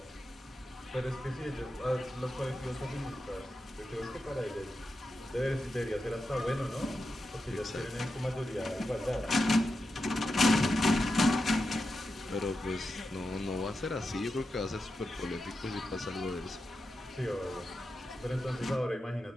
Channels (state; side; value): normal; both; correlation 0.89